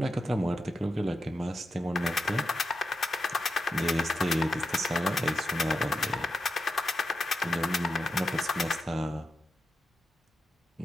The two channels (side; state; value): both; normal; correlation 0.87